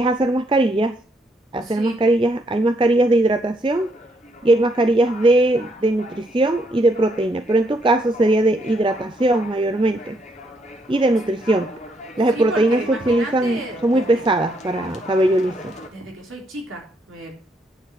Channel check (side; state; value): both; normal; correlation 0.74